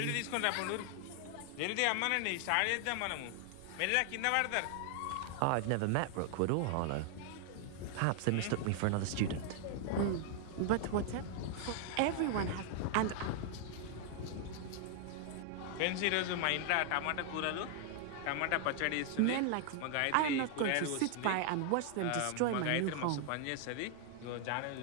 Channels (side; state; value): both; different; correlation 0.00